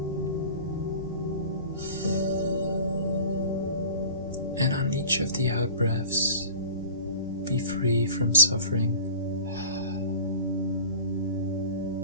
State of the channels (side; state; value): both; inverted; correlation -0.41